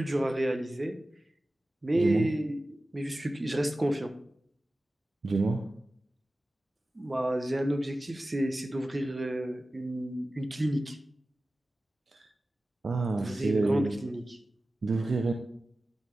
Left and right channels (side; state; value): both; normal; correlation 0.95